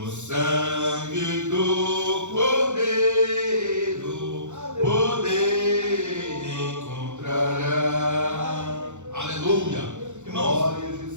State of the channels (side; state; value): left; late; 0.84 ms